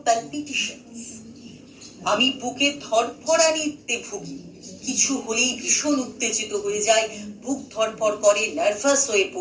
প্যালপিটেশনস, আমি বুকে ধড়ফড়ানিতে ভুগি, কিছু হলেই ভীষণ উত্তেজিত হয়ে যায়, বুক ধড়ফড় করে, নার্ভাস হয়ে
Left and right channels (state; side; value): identical; both; correlation 1.00